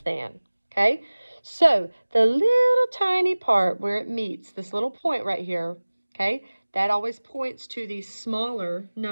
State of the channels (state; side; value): inverted; both; correlation -1.00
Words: than, okay? So the little tiny part where it meets, this little point right here, okay, that always points to the smaller